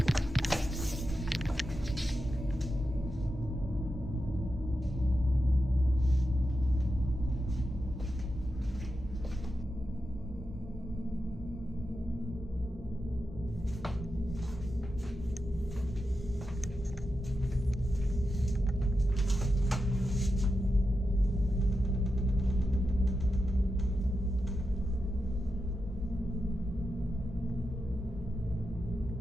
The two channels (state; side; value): normal; both; correlation 0.89